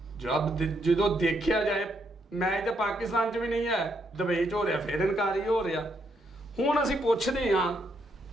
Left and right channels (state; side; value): normal; both; correlation 0.76